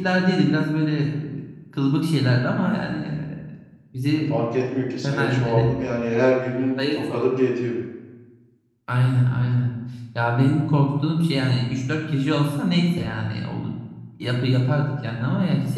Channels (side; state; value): both; identical; correlation 1.00